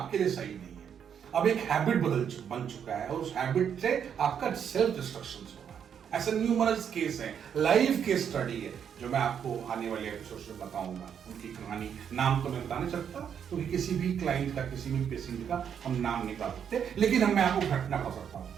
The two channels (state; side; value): quieter; left; 8.1 dB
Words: लिए सही नहीं है, अब एक हैबिट बन चुका है और उस हैबिट से आपका सेल्फ डिस्ट्रक्शन हो रहा है। ऐसे न्यूमरस केस है, लाइव केस स्टडी है जो मैं आपको आने वाले एपिसोड में बताऊंगा। उनकी कहानी नाम तो मैं बता नहीं सकता क्योंकि किसी भी क्लाइंट का, किसी भी पेशेंट का हम नाम नहीं बता सकते, लेकिन मैं आपको घटना बता सकता हूं